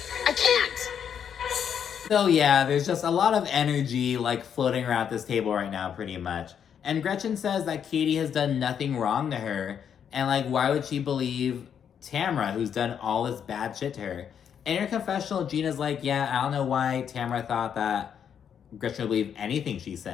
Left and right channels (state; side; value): quieter; right; 8.2 dB